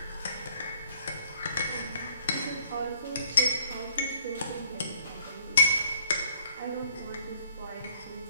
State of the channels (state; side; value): inverted; both; correlation -0.61